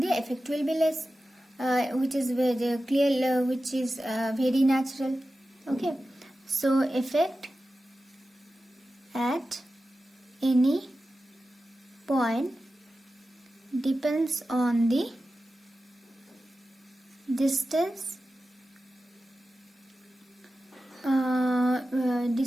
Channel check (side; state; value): both; normal; correlation 0.93